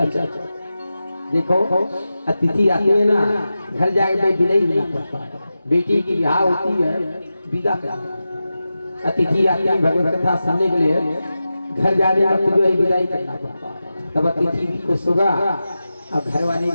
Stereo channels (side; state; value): both; inverted; correlation -0.93